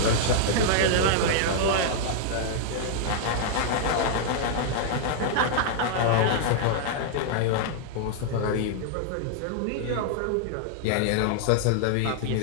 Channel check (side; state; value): both; different; correlation -0.01